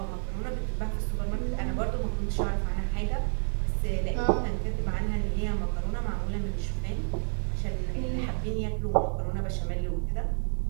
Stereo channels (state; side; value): silent; left; 58 dB below the other